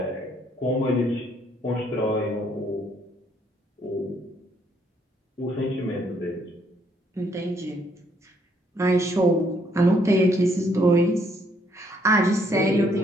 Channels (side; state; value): both; normal; correlation 0.69